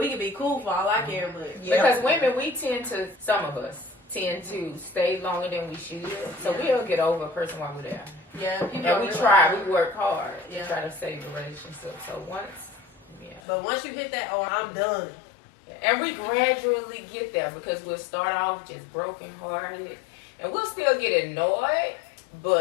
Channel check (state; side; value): drops out; right; at 13.4 s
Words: can be cool for all I care, but Because women, some of us tend to stay longer than we should. So we'll get over a person while we're there. yeah, people And don't we realize try, that. we work hard Yeah. to try to save the relationship. So But once you hit that, oh, I'm done. and we gradually get there because we'll start off just brokenhearted and we'll still get annoyed,